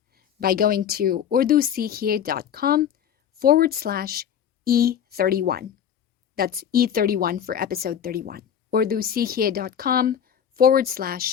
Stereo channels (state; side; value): quieter; right; 8.9 dB